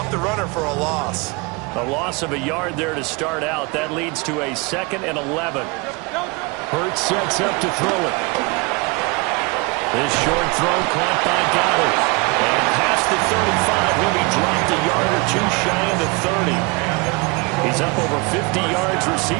the runner for a loss. A loss of a yard there to start out. That leads to a 2nd and 11. Hurts sets up to throw it. This short throw caught by Goddard. And past the 35, he'll be dropped a yard or two shy of the 30. He's up over 50 yards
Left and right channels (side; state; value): left; quieter; 27.6 dB